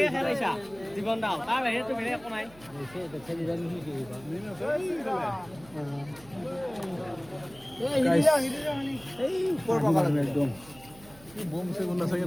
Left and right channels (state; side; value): noise; right; hum, 22 dB below the sound